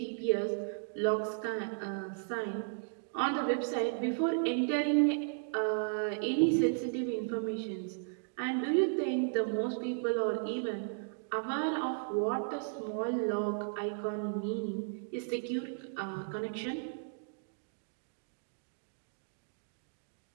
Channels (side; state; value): left; silent; digital silence